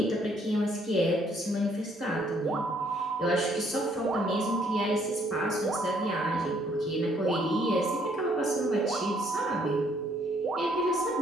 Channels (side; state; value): both; normal; correlation 0.66